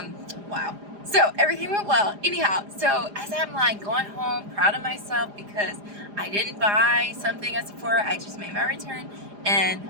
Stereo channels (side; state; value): left; late; 4.9 ms